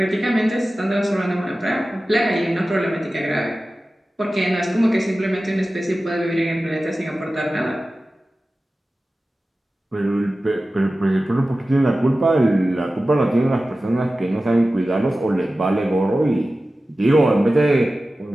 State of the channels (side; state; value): both; normal; correlation 0.95